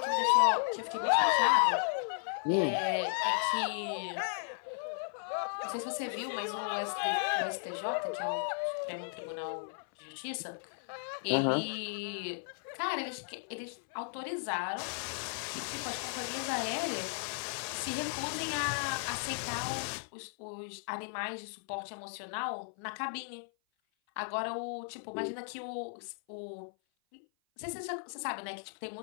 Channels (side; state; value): right; silent; 54 dB below the other